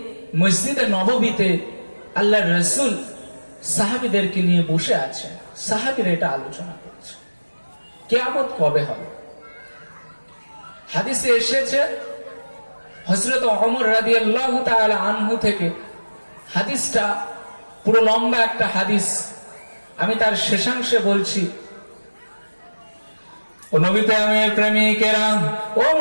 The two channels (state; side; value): inverted; both; correlation -1.00